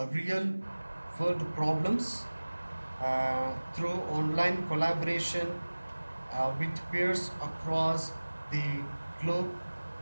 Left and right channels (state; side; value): inverted; both; correlation -1.00